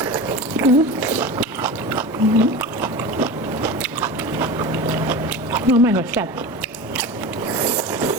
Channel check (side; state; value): both; normal; correlation 0.29